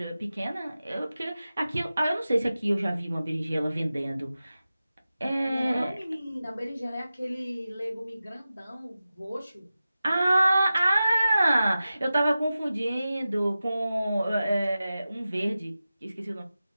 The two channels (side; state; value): both; inverted; correlation -0.94